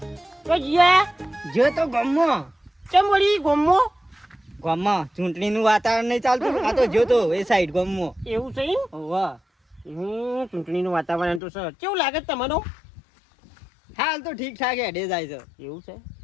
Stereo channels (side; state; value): right; drops out; at 11.4 s